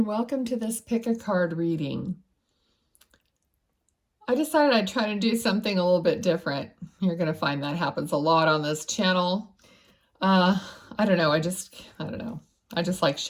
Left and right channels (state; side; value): identical; both; correlation 1.00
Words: welcome to this pick a card reading. I decided I'd try to do something a little bit different. You're going to find that happens a lot on this channel. I don't know. I don't know. I just like